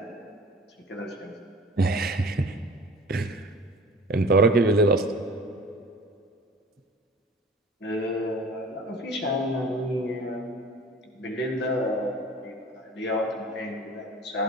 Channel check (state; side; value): normal; both; correlation 0.44